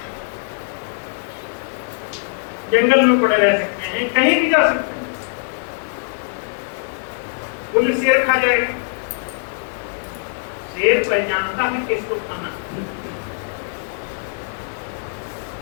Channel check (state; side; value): silent; right; digital silence